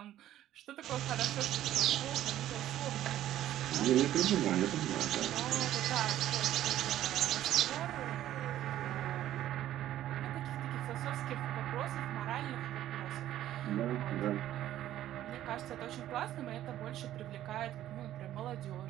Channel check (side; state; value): left; quieter; 12.8 dB